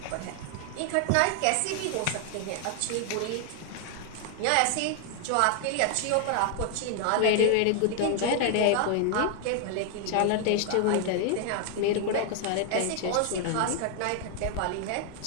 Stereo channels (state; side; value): different; both; correlation 0.00